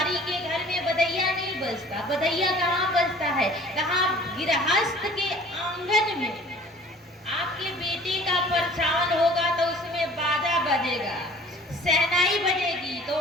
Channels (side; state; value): both; normal; correlation 0.49